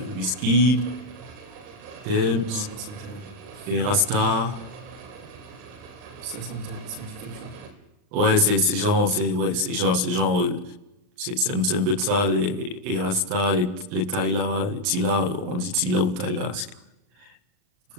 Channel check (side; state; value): left; late; 39 ms